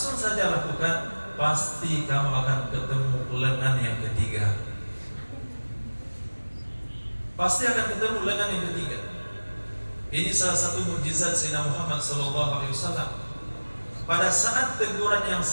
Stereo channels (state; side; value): inverted; both; correlation -1.00